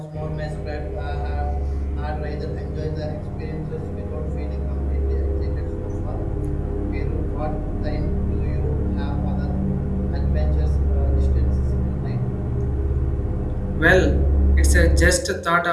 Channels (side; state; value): both; identical; correlation 1.00